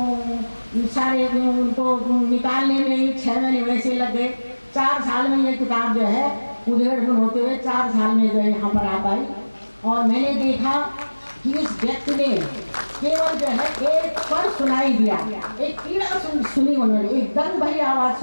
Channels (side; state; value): both; inverted; correlation -1.00